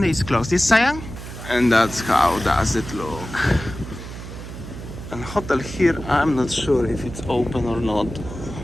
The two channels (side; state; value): right; noise; hum, 11 dB below the sound